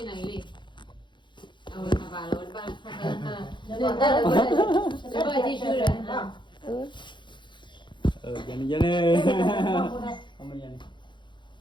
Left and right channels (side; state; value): right; late; 0.23 ms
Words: này đi rồi thà bà rồi ba để bà đi chơi rồi Yan ni. Không mà yan.